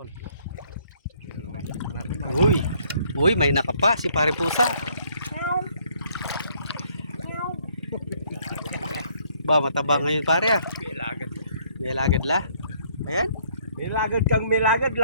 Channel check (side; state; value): both; inverted; correlation -0.64